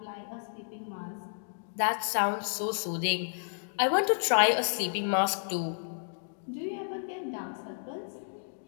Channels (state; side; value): silent; right; digital silence